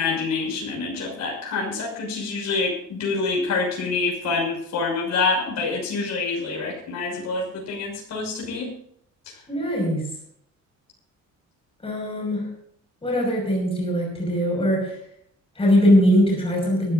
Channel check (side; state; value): both; normal; correlation 0.51